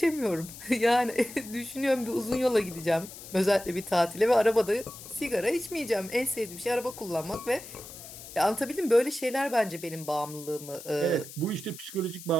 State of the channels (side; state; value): left; noise; hiss, 14 dB below the sound